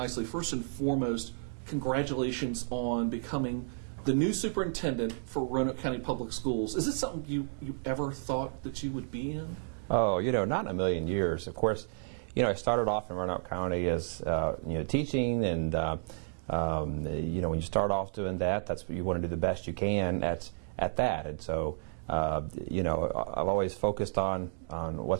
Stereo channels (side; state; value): left; silent; digital silence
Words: first and foremost, congratulations on becoming the new superintendent for Roanoke County Public Schools. Is this something you ever thought that you would be in? Oh, not in a million years. Of course, I started off in Roanoke County as, teaching, and, when you start off doing that, that's what you want to do the best you can at that. And so, I've always focused on